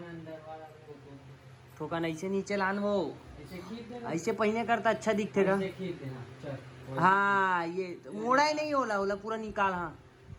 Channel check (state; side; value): identical; both; correlation 1.00